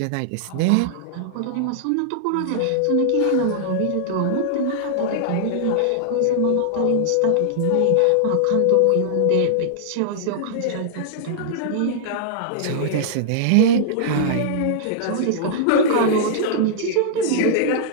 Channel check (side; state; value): both; different; correlation -0.01